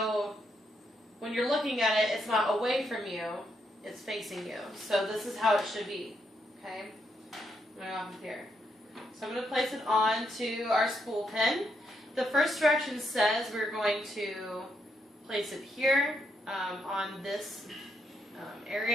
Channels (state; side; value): normal; both; correlation 0.78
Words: when you're looking at it, it's not away from you, it's facing you. So this is how it should be, okay? Going off here. So I'm going to place it onto our spool pin. The first direction says we're going to place it here on this